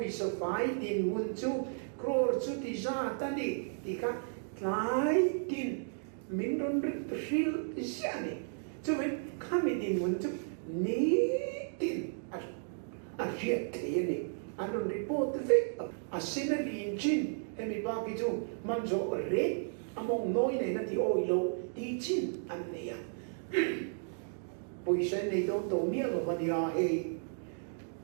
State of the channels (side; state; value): left; silent; digital silence